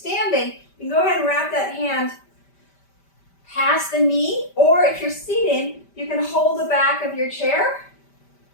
you can go ahead and wrap that hand past the knee, or if you're seating, you can hold the back of your chair.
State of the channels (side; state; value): right; late; 5.1 ms